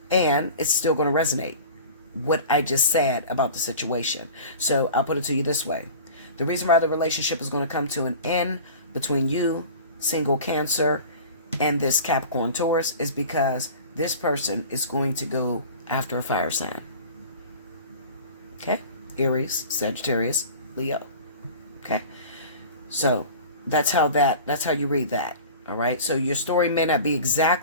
it's still going to resonate, what I just said about the situation. So I'll put it to you this way. The reason why the relationship is going to come to an end between you, single Cancer, and this Capricorn, Taurus is because this person is going to go after a fire sign. Okay? Aries, Sagittarius, Leo. Okay? So that's how you read that. All right? So your story may not be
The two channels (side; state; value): both; inverted; correlation -0.38